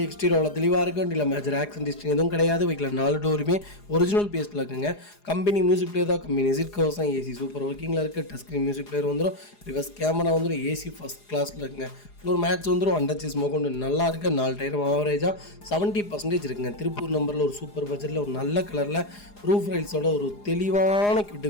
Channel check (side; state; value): right; late; 4.9 ms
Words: எக்ஸ்டீரியர் அவ்வளோ தெளிவாக இருக்கும். வண்டியில் மேஜர் ஆக்சிடென்ட் ஹிஸ்ட்ரி எதுவும் கிடையாது. வெஹிக்கில் 4 டோருமே ஒரிஜினல் பேஸில் இருக்குங்க. கம்பெனி மியூசிக் பிளேயர் தான். கம்பெனி சீட் கவர்ஸ் தான். ஏசி சூப்பர் ஒர்க்கிங்கில் இருக்குது. டச் ஸ்க்ரீன் மியூசிக் பிளேயர் வந்துடும். ரிவர்ஸ் கேமரா வந்துடும். ஏசி ஃபஸ்ட் கிளாஸில் இருக்குங்க. ஃப்ளோர் மேட்ச் வந்துடும். அண்டர்ச்சேஸ் மோகொண்டு நல்லா இருக்குது. 4 டயரும் ஆவரேஜாக 70% இருக்குங்க. திருப்பூர் நம்பரில் ஒரு சூப்பர் பட்ஜெட்டில் ஒரு நல்ல கலரில் ரூஃப் ரைல்ஸோட ஒரு தெளிவான கியூட்டு